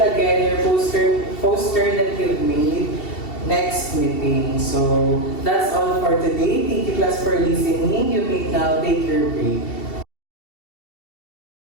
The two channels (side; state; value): right; late; 2.7 ms